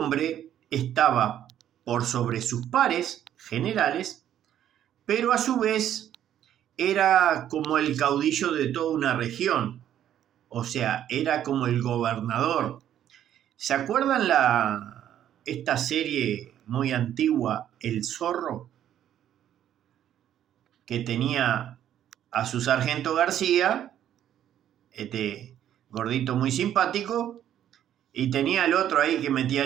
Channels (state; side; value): quieter; left; 10.8 dB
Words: estaba por sobre sus pares generales, pero a su vez era como el caudillo de toda una región, o sea, era como el gobernador. ¿Se acuerdan esta serie muy antigua, El Zorro? Que tenía a su sargento García, este gordito muy simpático, y tenía al otro ahí que metía